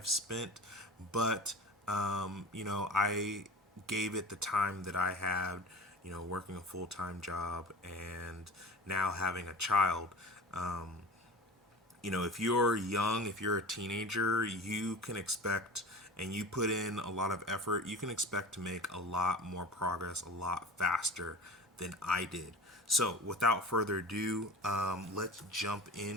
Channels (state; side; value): normal; both; correlation 0.35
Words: spent, but I gave it the time that I had, working a full-time job and now having a child. If you're young, if you're a teenager, you can expect, and you put in a lot of effort, you can expect to make a lot more progress a lot faster than I did. So without further ado, let's jump